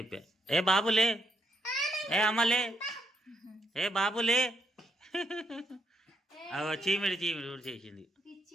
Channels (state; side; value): normal; both; correlation 0.76